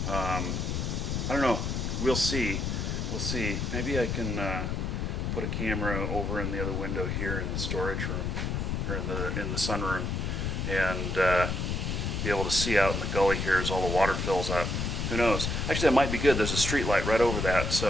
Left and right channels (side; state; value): left; noise; rumble, 1 dB below the sound